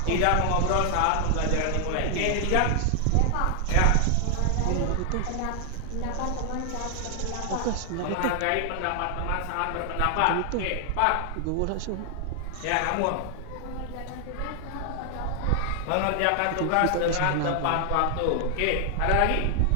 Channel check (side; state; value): both; different; correlation 0.00